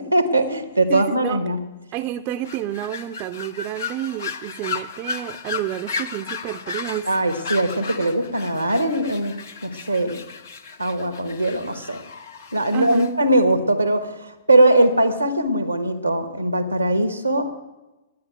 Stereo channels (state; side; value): inverted; both; correlation -0.74